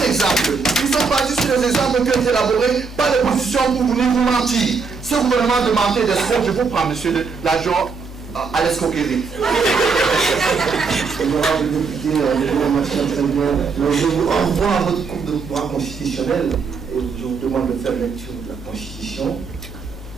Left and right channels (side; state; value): left; quieter; 4.9 dB